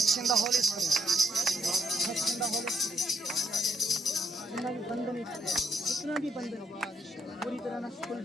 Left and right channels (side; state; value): both; normal; correlation 0.70